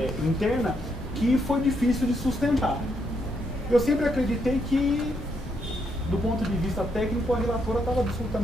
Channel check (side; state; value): both; normal; correlation 0.77